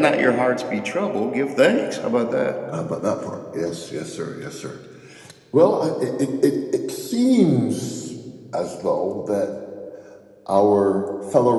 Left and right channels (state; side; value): identical; both; correlation 1.00